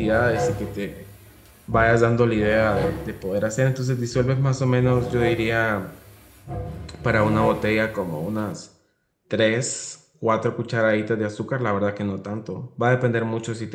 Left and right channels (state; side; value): identical; both; correlation 1.00